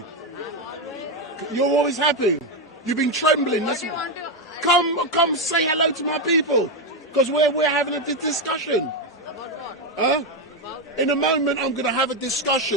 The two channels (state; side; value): normal; both; correlation 0.07